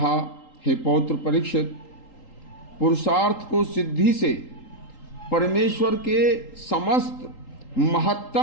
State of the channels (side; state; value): right; late; 3.8 ms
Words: हे पौत्र परीक्षित, पुरुषार्थ को सिद्धि से परमेश्वर के समस्त